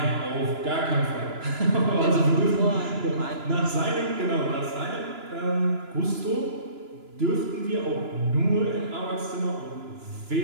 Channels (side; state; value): left; late; 2.9 ms